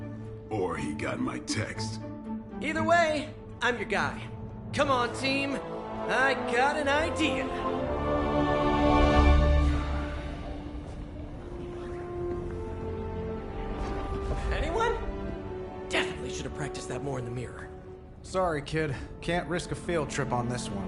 Or he got my text. Either way, I'm your guy. Come on, team. I got an idea. Anyone? Definitely should have practiced that more in the mirror. Sorry, kid. Can't risk a field trip on this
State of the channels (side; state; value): both; identical; correlation 1.00